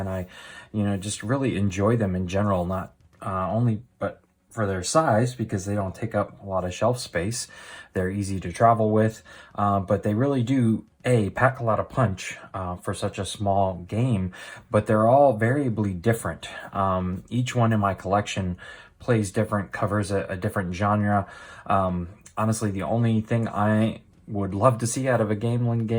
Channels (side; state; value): both; identical; correlation 1.00